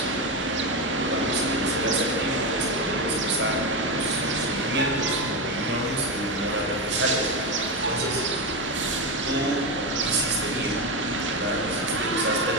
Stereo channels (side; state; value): both; normal; correlation 0.14